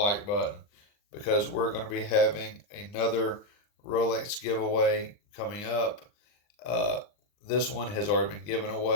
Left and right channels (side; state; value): right; late; 39 ms